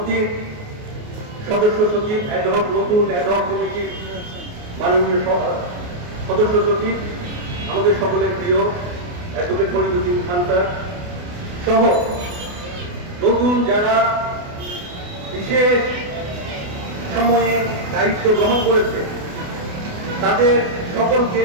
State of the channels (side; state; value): left; late; 28 ms